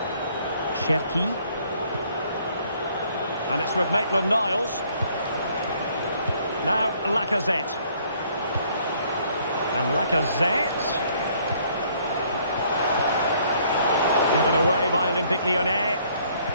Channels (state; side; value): inverted; both; correlation -0.63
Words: Cherki. And it's with Maitland-Niles. Now Lacazette. And Lacazette. Given away by Olympique Lyonnais.